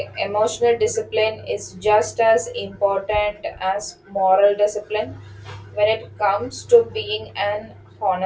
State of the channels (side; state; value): both; identical; correlation 1.00